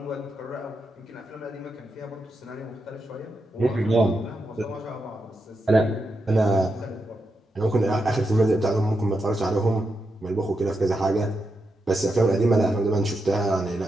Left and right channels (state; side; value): normal; both; correlation 0.85